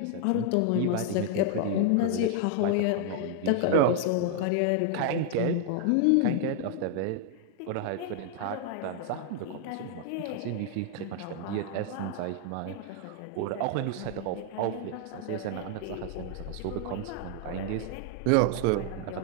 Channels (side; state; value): both; different; correlation 0.00